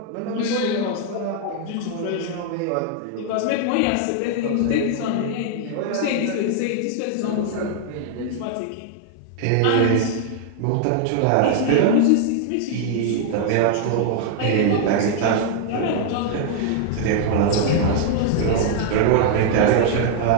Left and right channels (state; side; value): different; both; correlation 0.00